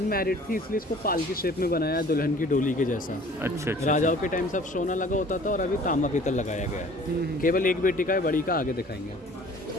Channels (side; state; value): both; normal; correlation 0.50